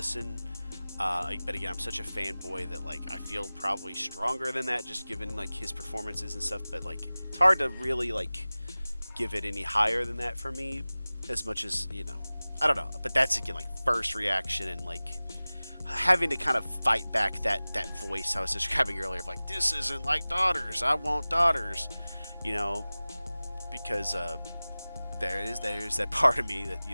But again, I'm such a fanboy that like I feel probably stronger than that, just given like his performances and stuff. But like it's hard to really like give it any higher than that for me, as much as I don't know. But that's again like first reaction and like having to kind of fight back that voice I was describing earlier of like, this isn't like Daughters. I want Daughters, you know, because there's that part of me that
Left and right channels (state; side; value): inverted; both; correlation -0.98